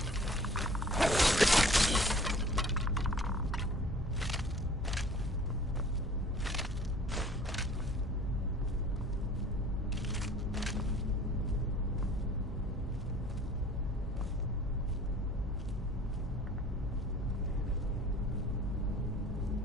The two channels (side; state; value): both; normal; correlation 0.49